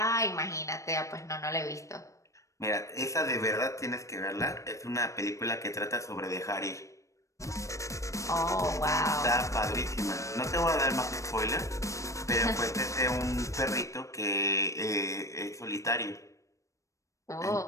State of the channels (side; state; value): right; late; 0.15 ms